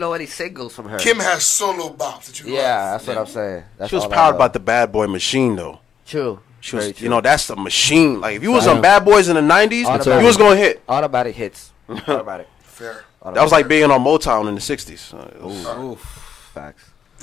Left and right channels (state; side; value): quieter; right; 8.0 dB